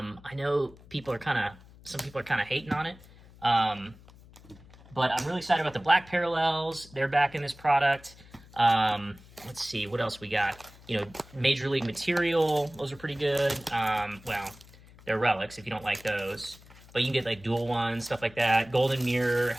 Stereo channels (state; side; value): noise; left; hum, 23 dB below the sound